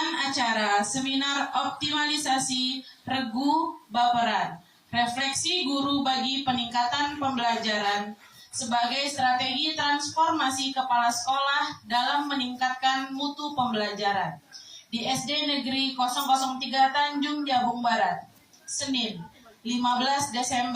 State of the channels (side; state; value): both; identical; correlation 1.00